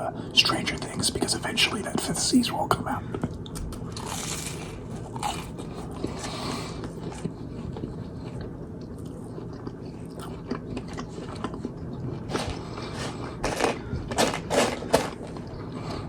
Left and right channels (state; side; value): identical; both; correlation 1.00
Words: Stranger Things, because eventually that 5th season will come out.